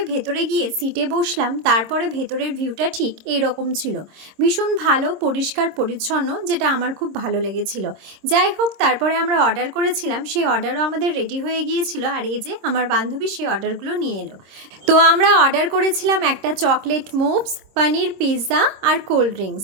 ভেতরে গিয়ে সিটে বসলাম, তারপরে ভেতরের ভিউটা ঠিক এইরকম ছিল, ভীষণ ভালো, পরিষ্কার পরিচ্ছন্ন, যেটা আমার খুব ভালো লেগেছিল। যাই হোক, তারপরে আমরা অর্ডার করেছিলাম, সেই অর্ডারও আমাদের রেডি হয়ে গিয়েছিল। আর এই যে আমার বান্ধবী সেই অর্ডারগুলো নিয়ে এলো। তো আমরা অর্ডার করেছিলাম একটা চকলেট মুভস, পনির পিৎজা আর কোল্ড ড্রিঙ্কস।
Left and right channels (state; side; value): late; left; 26 ms